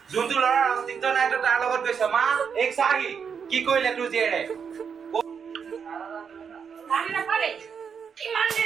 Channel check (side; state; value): left; quieter; 6.7 dB